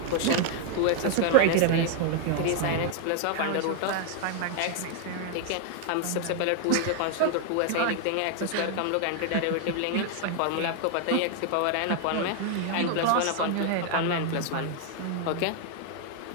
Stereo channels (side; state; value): both; different; correlation 0.00